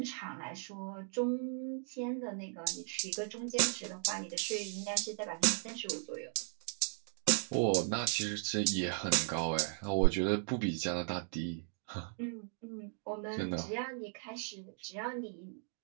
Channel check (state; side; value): silent; left; 53 dB below the other